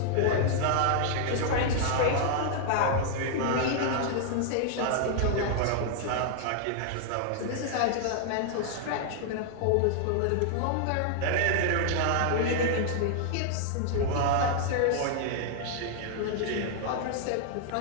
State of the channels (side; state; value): both; different; correlation -0.01